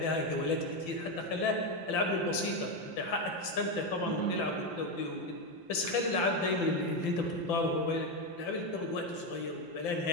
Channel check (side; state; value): right; late; 5.8 ms